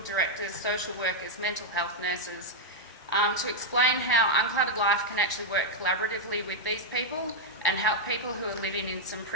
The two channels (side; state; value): both; normal; correlation -0.03